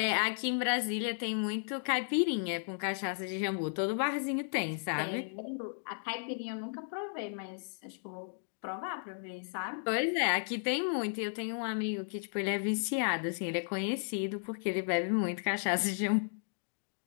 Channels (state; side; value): silent; right; digital silence